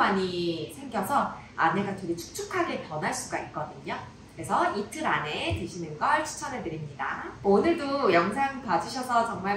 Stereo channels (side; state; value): both; identical; correlation 1.00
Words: 생겨서 안에가 되게 축축하게 변할 수가 있거든요. 그래서 이틀 안에 드시는 걸 추천해드립니다. 오늘도 영상 봐주셔서